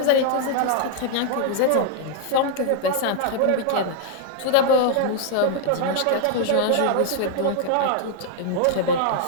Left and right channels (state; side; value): different; both; correlation 0.00